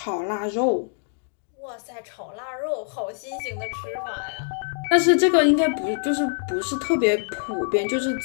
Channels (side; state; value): right; silent; 62 dB below the other